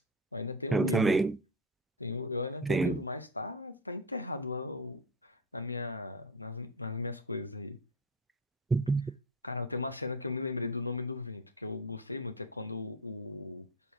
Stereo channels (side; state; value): both; normal; correlation 0.22